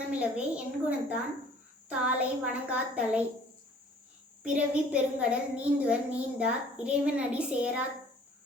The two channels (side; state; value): both; normal; correlation 0.53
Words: என் குணத்தான் தாளை வணங்காத்தலை. பிறவி பெருங்கடல் நீந்துவர் நீந்தார் இறைவனடி சேரா